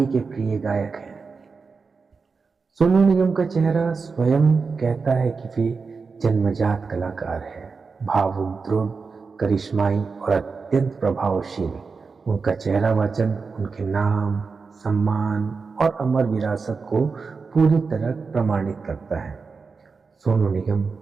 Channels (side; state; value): left; quieter; 4.8 dB